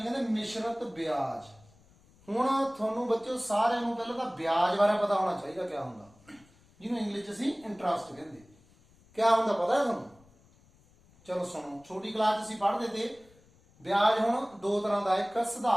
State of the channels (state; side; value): noise; left; rumble, 29 dB below the sound